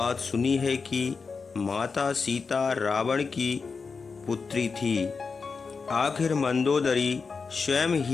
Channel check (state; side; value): quieter; right; 4.9 dB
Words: सुनी है कि माता सीता रावण की पुत्री थी? आखिर मंदोदरी स्वयं